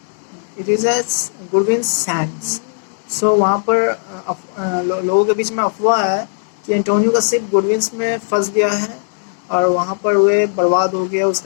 It is a good winds sands. So वहाँ पर लोगों के बीच में अफवाह है कि Antonio का ship good winds में फंस गया है और वहाँ पर वे बर्बाद हो गया,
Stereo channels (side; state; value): right; silent; digital silence